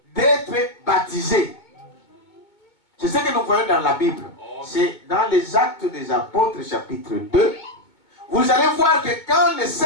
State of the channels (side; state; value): right; late; 2.2 ms